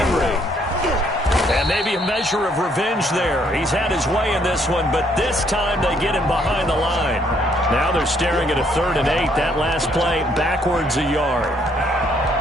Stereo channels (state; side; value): normal; both; correlation 0.68